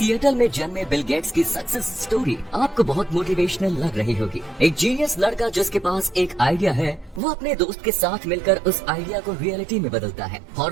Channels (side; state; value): left; drops out; at 7.2 s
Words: में जन्मे बिल गेट्स की सक्सेस स्टोरी आपको बहुत मोटिवेशनल लग रही होगी। एक जीनियस लड़का जिसके पास एक आइडिया है, वो अपने दोस्त के साथ मिलकर उस आइडिया को रियलिटी में बदलता है।